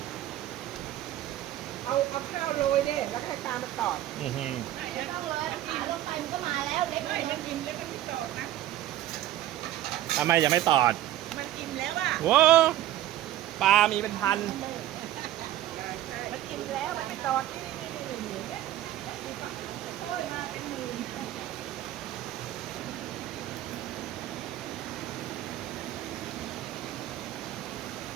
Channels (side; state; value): left; quieter; 13.6 dB